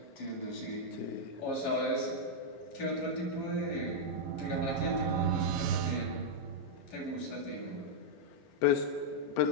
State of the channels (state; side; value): normal; both; correlation -0.05